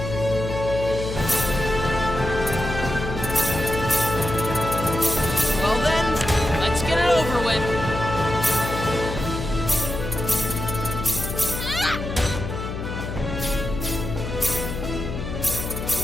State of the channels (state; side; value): noise; left; hum, 6 dB below the sound